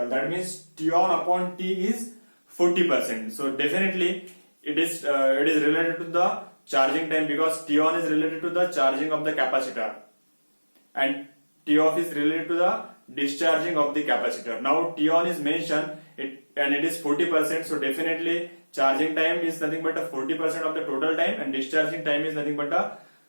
That means T on upon T is 40%. So definitely it is related to the charging time, because T on is related to the charging of the capacitor and T off is related to the discharging of the capacitor. Now T on is mentioned and it is 40%. So definitely charging time is nothing but a 40% of the total time, and discharging time is nothing but a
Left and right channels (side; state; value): both; inverted; correlation -1.00